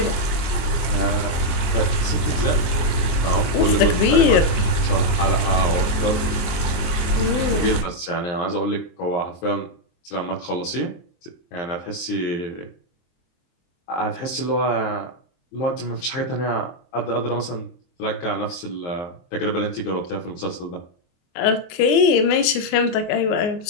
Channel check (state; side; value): late; right; 23 ms